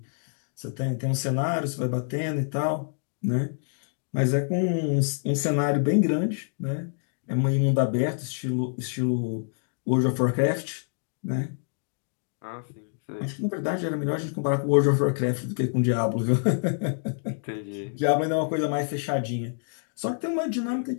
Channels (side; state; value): right; silent; digital silence